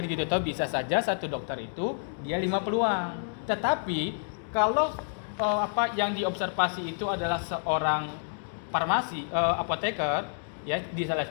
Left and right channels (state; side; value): silent; right; digital silence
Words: gitu toh, bisa saja satu dokter itu dia 5 peluang. Tetapi kalau yang diobservasi itu adalah seorang farmasi, apoteker, ya di salah